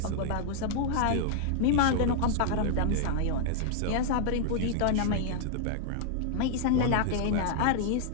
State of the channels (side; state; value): both; different; correlation -0.01